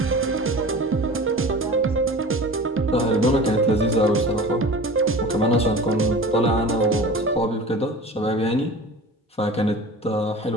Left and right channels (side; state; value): both; normal; correlation 0.37